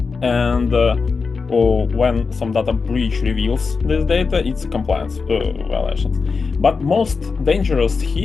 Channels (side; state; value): right; quieter; 4.8 dB